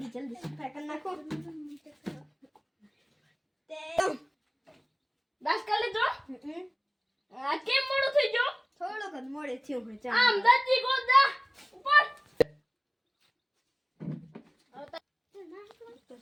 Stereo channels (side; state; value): both; identical; correlation 1.00